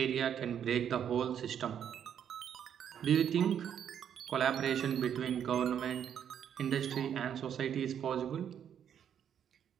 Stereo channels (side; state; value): left; quieter; 9.0 dB